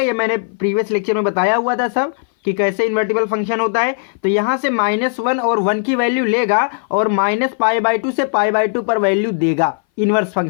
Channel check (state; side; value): silent; right; 61 dB below the other